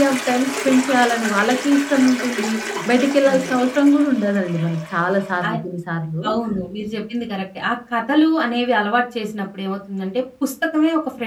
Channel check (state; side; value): identical; both; correlation 1.00